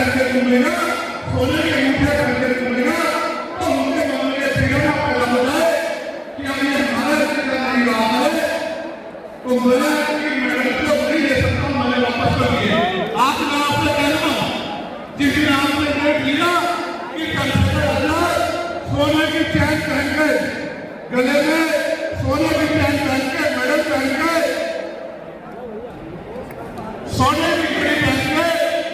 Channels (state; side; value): identical; both; correlation 1.00